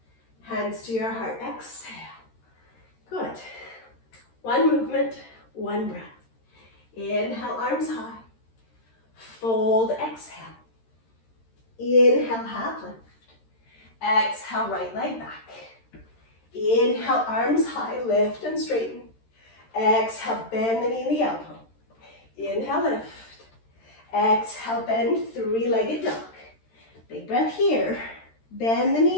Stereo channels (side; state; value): right; late; 13 ms